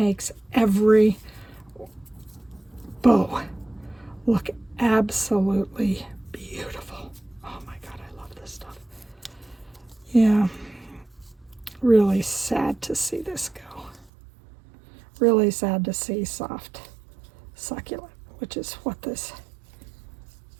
every bow look absolutely beautiful. Oh my God, I love this stuff. Yeah, really sad to see this go. Really sad to see soft succulent, which is what this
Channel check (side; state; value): left; drops out; at 14.1 s